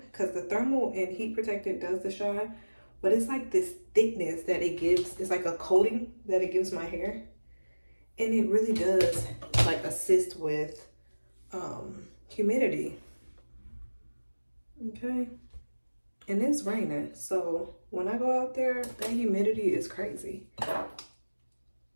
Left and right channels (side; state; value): both; inverted; correlation -1.00